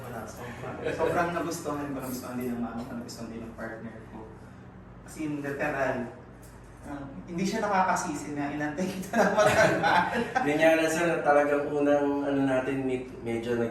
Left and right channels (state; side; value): identical; both; correlation 1.00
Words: nagustuhan ko, nagustuhan din ng mama ko, nagustuhan din ng partner ko. Kasi yung literal, hindi siya nakakasisi na inantay kita na matagal. Ganyan na sir, talagang unang ano natin, medyo